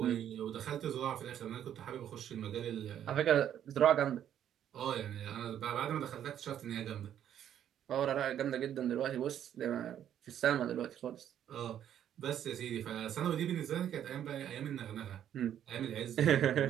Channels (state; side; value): quieter; left; 10.2 dB